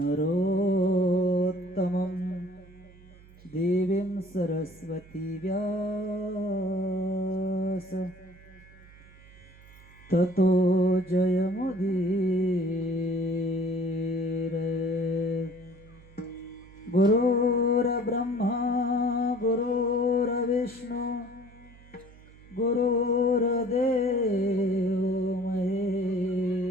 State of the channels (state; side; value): noise; right; hum, 23 dB below the sound